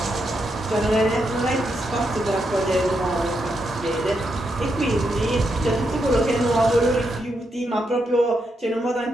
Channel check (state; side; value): normal; both; correlation 0.82